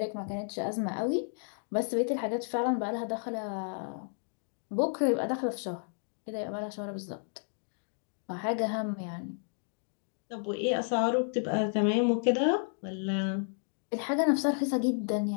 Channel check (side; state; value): right; silent; 56 dB below the other